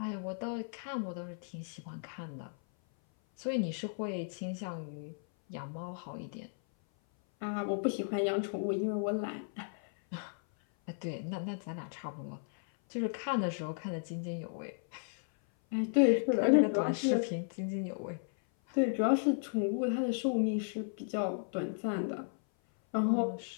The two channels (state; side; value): silent; right; 55 dB below the other